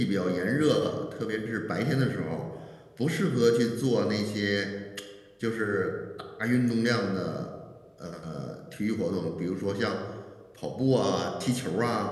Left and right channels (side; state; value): both; identical; correlation 1.00